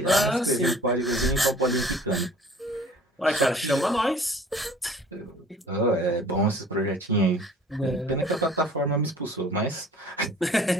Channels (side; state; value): both; normal; correlation 0.49